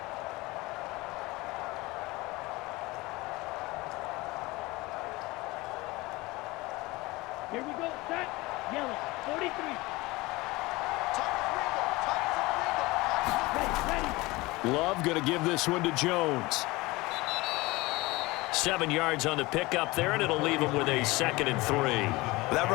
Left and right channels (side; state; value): right; quieter; 21.7 dB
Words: Here we go, set, yellow, 43. Ready. Love going to give this one to Jones. 7 yards on the pickup there, and it'll leave him with a 2nd and 3. That